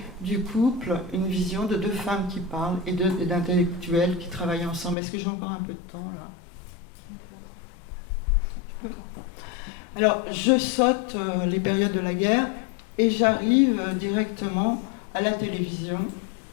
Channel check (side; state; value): right; drops out; at 5.0 s